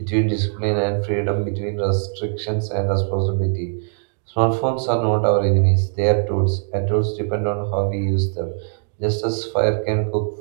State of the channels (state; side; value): silent; left; digital silence